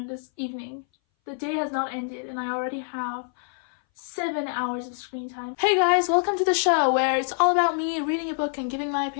this evening. The day has not ended and I already have 7 hours of screen time. Hey guys, welcome to the show where it's all about me reading a book and giving my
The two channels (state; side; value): silent; right; 60 dB below the other